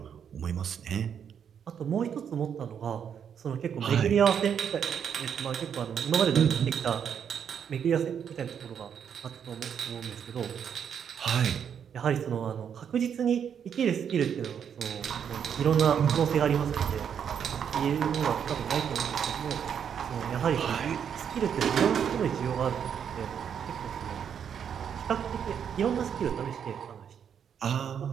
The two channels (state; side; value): quieter; left; 8.0 dB